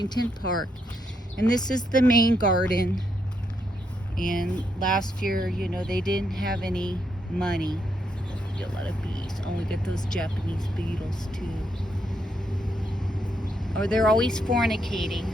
Park, and this is the main garden. And last year, you know, they didn't have any money. A lot of bees. Oh, we get those Japanese beetles too. Or they're always fornicating.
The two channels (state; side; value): normal; both; correlation 0.78